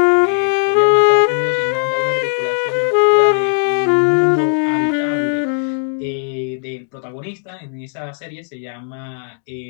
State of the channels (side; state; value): right; silent; 60 dB below the other